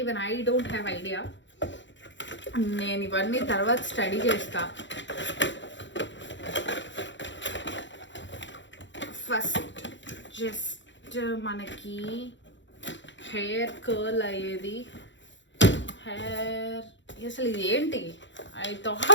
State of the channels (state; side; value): late; right; 0.54 ms